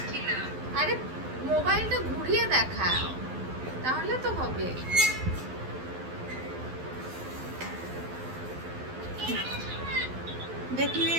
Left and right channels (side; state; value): left; late; 12 ms